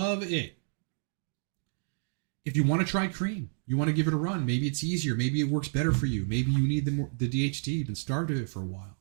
it. If you want to try cream, you want to give it a run, maybe it's easier, maybe it works better for you, maybe you need the DHT, you've been starved of it for a while,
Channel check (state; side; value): silent; left; digital silence